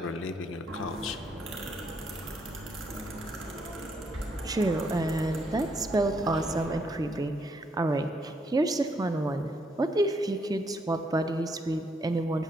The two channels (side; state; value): both; normal; correlation 0.74